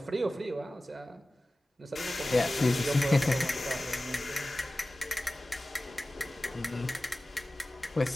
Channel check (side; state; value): both; normal; correlation 0.97